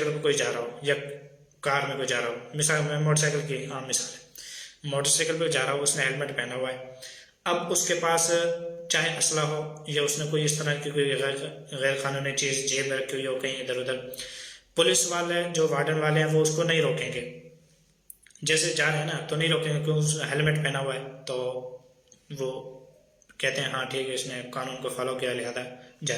पर कोई जा रहा हो, या कार में कोई जा रहा हो, मिसाल में मोटरसाइकिल की आम मिसाल है, मोटरसाइकिल पर जा रहा हो, उसने हेलमेट पहना हुआ है। अब उसके पास चाहे असला हो, या उसने कोई इस तरह की कोई गैर कानूनी चीज़ जेब में रखी हुई हो कहीं इधर उधर, पुलिस वाले जो वार्डन वाले हैं वो उसको नहीं रोकेंगे। जैसे जा रहे हैं ना, तो नहीं रोकेंगे क्योंकि उसने हेलमेट पहना हुआ है, तो वो कहते हैं हाँ ठीक है, इसने कानून को फॉलो किया, लिहाजा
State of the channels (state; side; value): identical; both; correlation 1.00